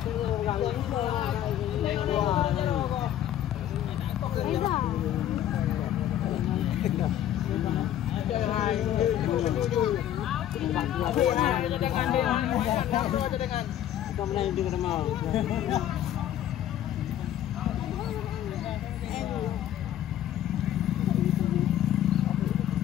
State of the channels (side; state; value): right; quieter; 11.5 dB